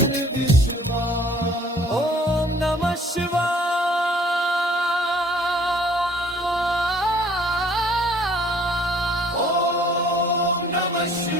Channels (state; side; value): normal; both; correlation 0.56